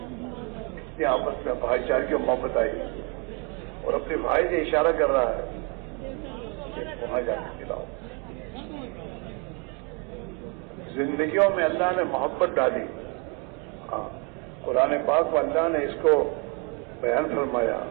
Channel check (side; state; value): left; quieter; 33.9 dB